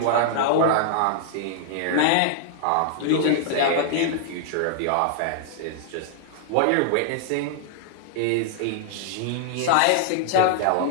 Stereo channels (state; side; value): different; both; correlation -0.01